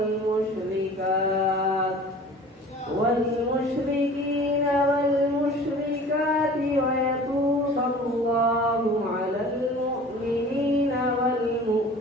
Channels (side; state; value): both; normal; correlation 0.44